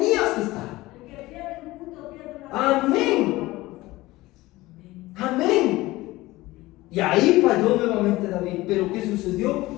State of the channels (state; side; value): quieter; right; 18.9 dB